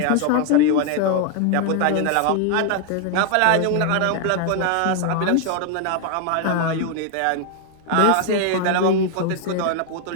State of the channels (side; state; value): both; different; correlation 0.00